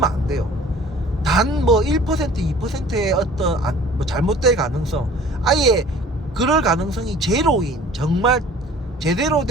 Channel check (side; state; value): both; normal; correlation 0.48